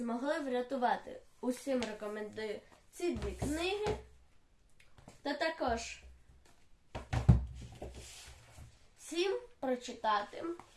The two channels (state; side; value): identical; both; correlation 1.00